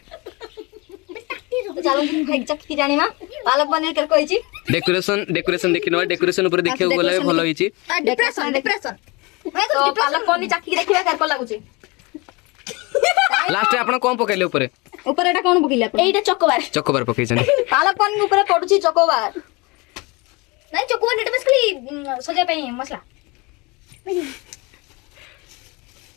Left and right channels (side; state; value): right; quieter; 26.3 dB